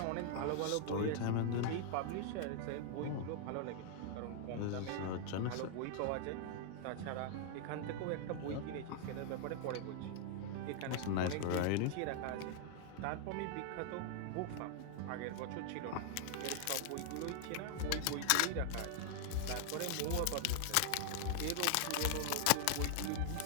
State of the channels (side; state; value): both; different; correlation -0.01